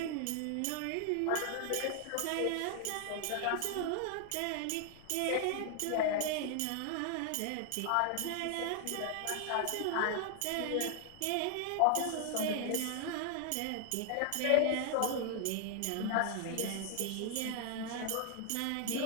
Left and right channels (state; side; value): different; both; correlation 0.00